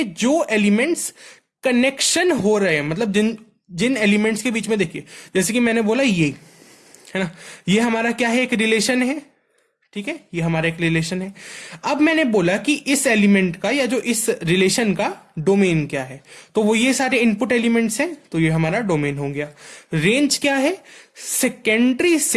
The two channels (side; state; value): both; identical; correlation 1.00